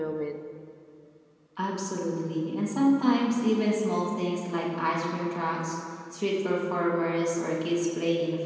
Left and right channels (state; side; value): identical; both; correlation 1.00